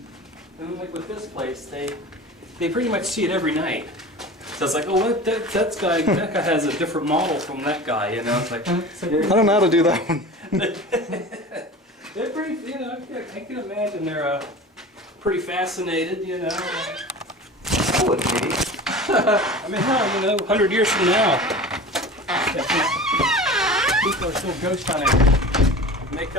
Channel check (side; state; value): both; normal; correlation 0.36